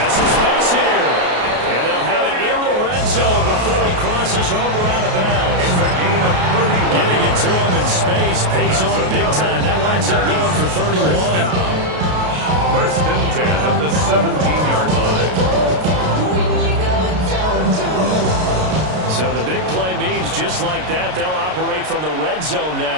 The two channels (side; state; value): left; late; 33 ms